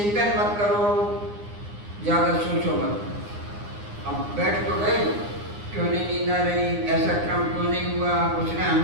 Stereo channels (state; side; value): late; left; 9.7 ms